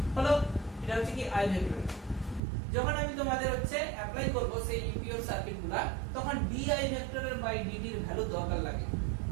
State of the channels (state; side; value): drops out; left; at 2.4 s